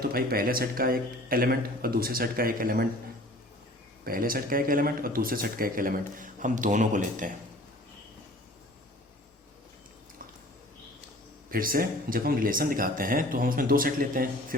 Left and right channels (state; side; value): normal; both; correlation 0.48